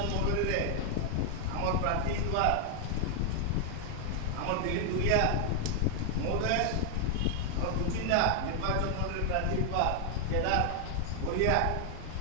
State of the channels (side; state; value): both; different; correlation 0.00